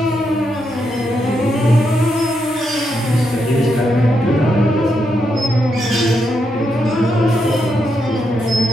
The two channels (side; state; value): both; normal; correlation 0.81